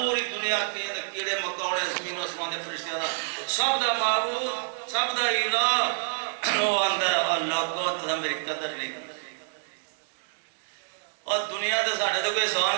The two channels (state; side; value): silent; left; digital silence